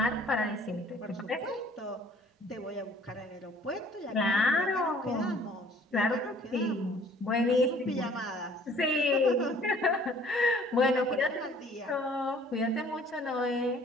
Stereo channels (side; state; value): both; normal; correlation 0.54